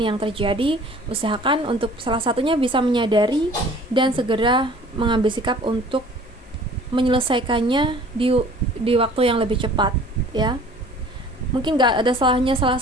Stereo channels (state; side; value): normal; both; correlation 0.49